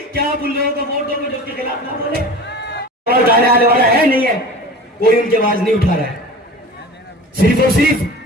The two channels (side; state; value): both; normal; correlation 0.36